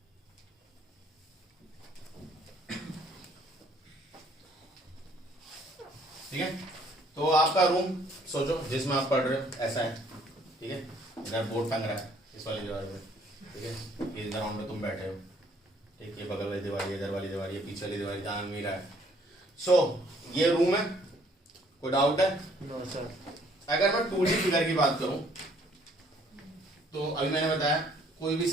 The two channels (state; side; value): normal; both; correlation 0.62